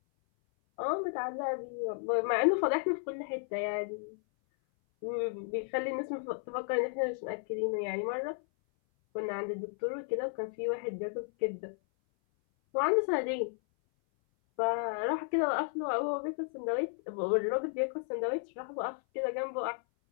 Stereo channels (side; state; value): right; silent; 55 dB below the other